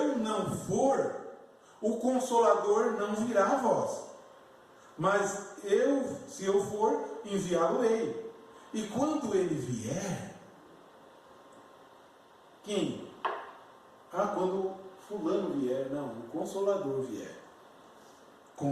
não for, o Consolador não virá a vós. Mas se eu for, enviá-lo-ei. E quando ele vier, quem? Quando fulano vier, não, o Consolador vier,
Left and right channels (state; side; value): identical; both; correlation 1.00